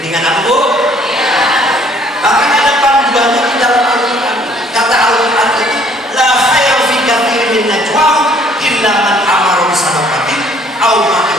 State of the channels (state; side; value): normal; both; correlation 0.60